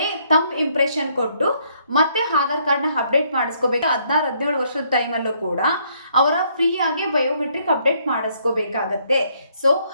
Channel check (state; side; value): inverted; both; correlation -0.69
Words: ಥಂಬ್ ಇಂಪ್ರೆಷನ್ ಕೊಟ್ಟು ಮತ್ತೆ ಆಧಾರ್ ಕಾರ್ಡ್ ನ ಅಪ್ಡೇಟ್ ಮಾಡಿಸ್ಕೋಬೇಕು. 16-17 ವರ್ಷದ ಟೈಮ್ ಅಲ್ಲೂ ಕೂಡ ಅವರ ಫ್ರೀ ಆಗಿ ಬಯೋಮೆಟ್ರಿಕ್ ಅಪ್ಡೇಟ್ ಮಾಡಿಸ್ಕೋಬೇಕಾಗತ್ತೆ. ಸೊ